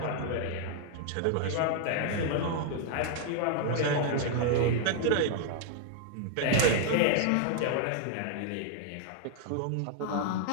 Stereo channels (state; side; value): different; both; correlation 0.00